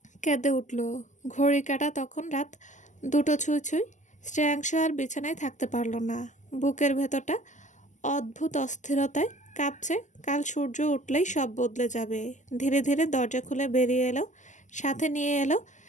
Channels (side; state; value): right; late; 0.35 ms